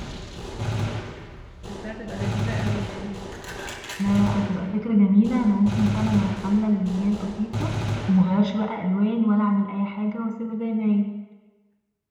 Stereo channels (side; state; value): both; identical; correlation 1.00